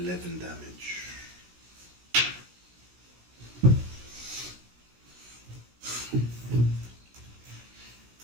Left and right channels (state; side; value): late; left; 17 ms